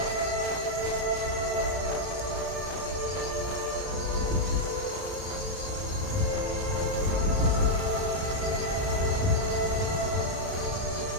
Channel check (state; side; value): late; left; 34 ms